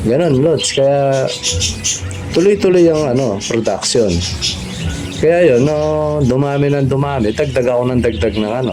Ganon, lods. Kaya tuloy-tuloy yung production. Kaya yun, dumami ng dumami. Dagdag ako ng dagdag ng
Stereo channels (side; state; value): both; identical; correlation 1.00